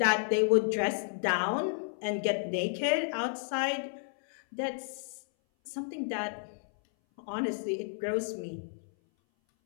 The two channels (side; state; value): right; silent; 57 dB below the other